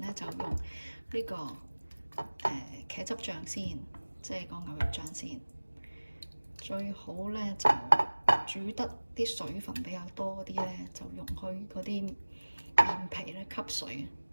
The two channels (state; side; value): inverted; both; correlation -1.00